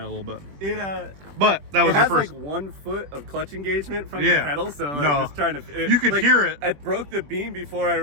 a little bit. But that was it your has first. like 1 foot of clutch engagement from Yeah. the pedal, so like, No. just trying to. You could hear it. I broke the beam before I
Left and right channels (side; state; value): left; late; 21 ms